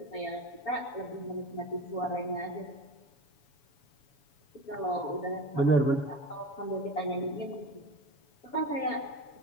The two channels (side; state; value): right; late; 7.1 ms